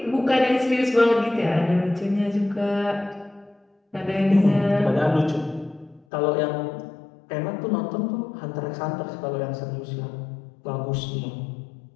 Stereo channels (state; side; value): drops out; right; at 6.1 s